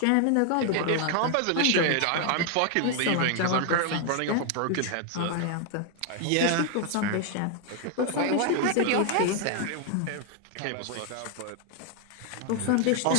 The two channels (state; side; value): different; both; correlation 0.00